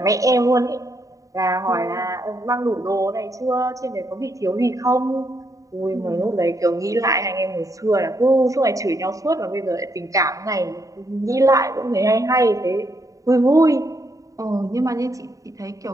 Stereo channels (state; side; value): late; left; 0.16 ms